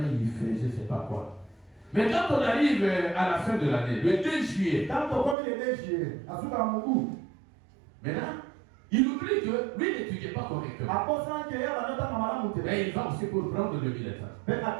fait je ne sais pas quoi. Mais quand on arrive à la fin de l'année, le 2 juillet, maintenant, il oublie que lui n'étudie pas correctement. Et il va aussi pour prendre le bulletin.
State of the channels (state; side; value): drops out; left; at 5.4 s